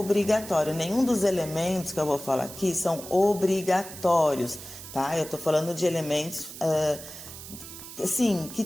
Nenhum dos elementos que eu vou falar aqui são obrigatórios, tá? Eu tô falando de elementos, assim, que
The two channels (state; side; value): noise; right; hiss, 13 dB below the sound